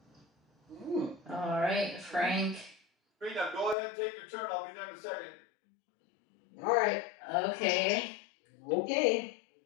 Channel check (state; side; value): drops out; right; at 3.8 s